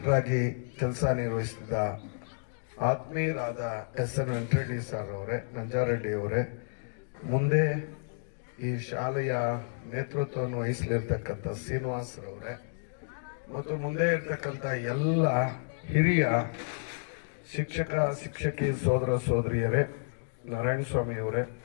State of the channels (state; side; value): silent; right; digital silence